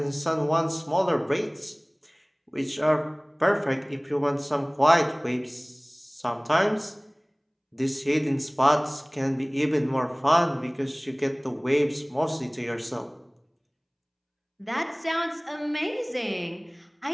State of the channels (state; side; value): identical; both; correlation 1.00